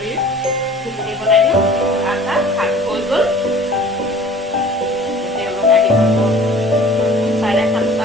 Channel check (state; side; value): normal; both; correlation 0.47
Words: ঘুগুনি বনাই দিওঁ আটা ভাত হৈ গ'ল তেওঁলোক আহি পাব